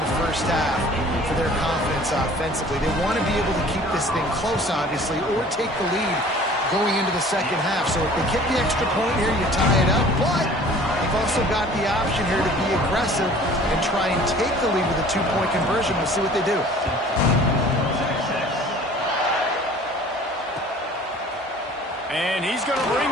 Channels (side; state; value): both; normal; correlation 0.48